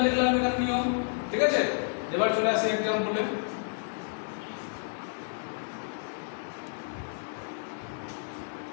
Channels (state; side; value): silent; right; digital silence